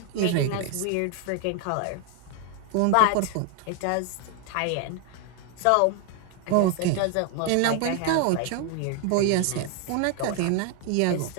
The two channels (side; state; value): both; different; correlation 0.01